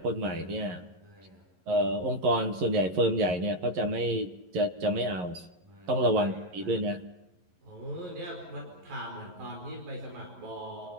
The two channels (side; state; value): left; late; 11 ms